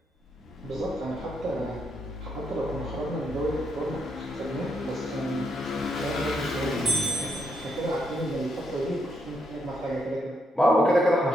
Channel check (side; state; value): both; normal; correlation 0.78